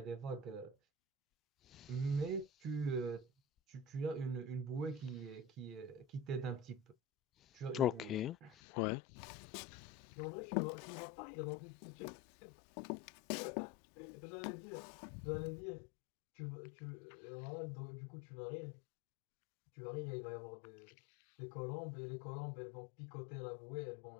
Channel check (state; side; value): drops out; right; at 8.6 s